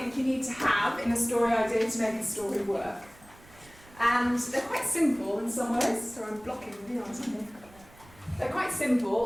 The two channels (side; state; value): right; noise; rumble, 24 dB below the sound